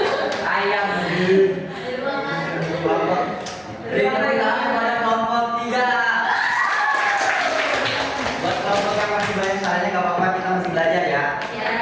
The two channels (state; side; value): identical; both; correlation 1.00